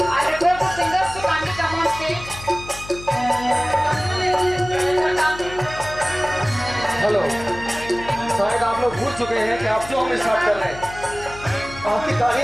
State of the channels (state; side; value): noise; left; hum, 15 dB below the sound